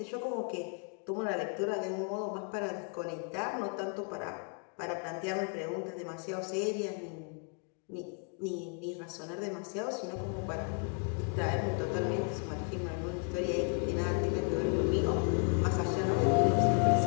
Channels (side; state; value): right; quieter; 38.5 dB